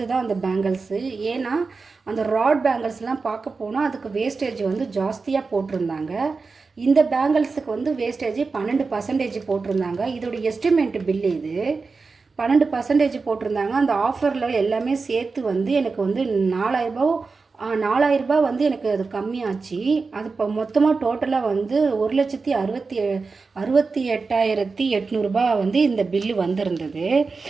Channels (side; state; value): left; quieter; 4.3 dB